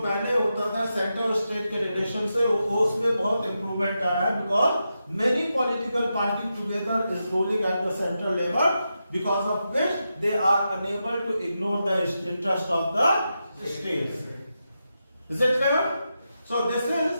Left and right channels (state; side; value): inverted; both; correlation -0.88